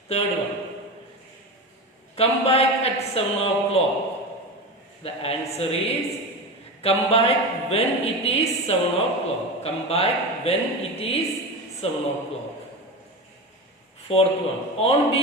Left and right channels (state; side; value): normal; both; correlation 0.24